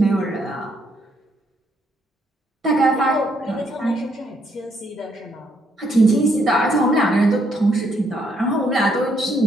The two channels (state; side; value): normal; both; correlation 0.72